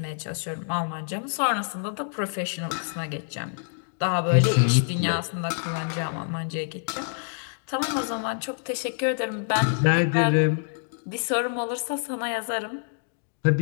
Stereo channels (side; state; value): right; silent; digital silence